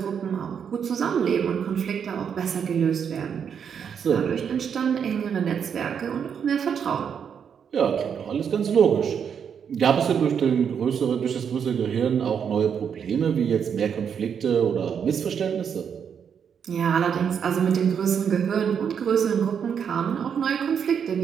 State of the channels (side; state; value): left; quieter; 7.5 dB